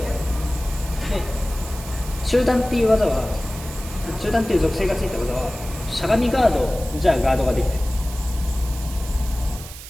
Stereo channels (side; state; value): right; noise; hiss, 14 dB below the sound